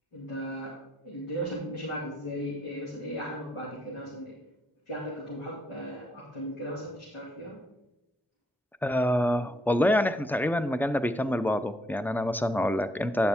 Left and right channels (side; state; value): both; normal; correlation 0.74